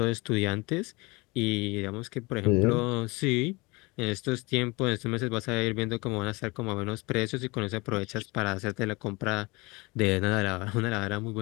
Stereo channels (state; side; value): quieter; right; 25.2 dB